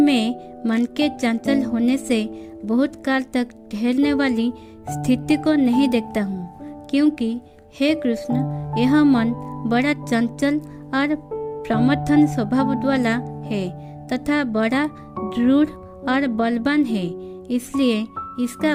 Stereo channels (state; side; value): identical; both; correlation 1.00